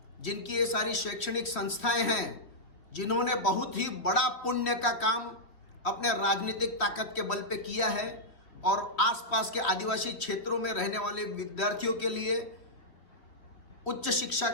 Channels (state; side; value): late; right; 3.3 ms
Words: जिनकी ये सारी शैक्षणिक संस्थाएं हैं, जिन्होंने बहुत ही बड़ा पुण्य का काम अपने राजनीतिक ताकत के बल पे किया है और आसपास के आदिवासी क्षेत्रों में रहने वाले विद्यार्थियों के लिए उच्च शिक्षा